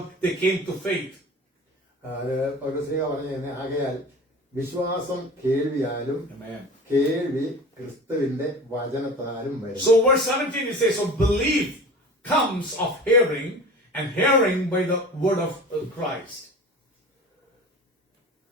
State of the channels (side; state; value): both; normal; correlation 0.37